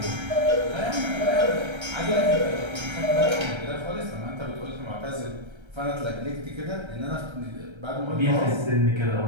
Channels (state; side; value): late; left; 1.3 ms